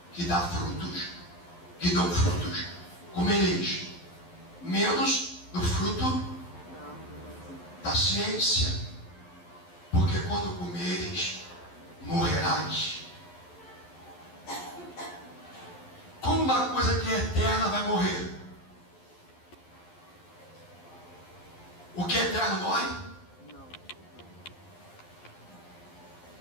que dão frutos, comereis, menos do fruto da ciência, porque quando comeres, morrerás. Como uma coisa que é eterna vai morrer? O que é eterno morre?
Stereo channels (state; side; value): late; right; 11 ms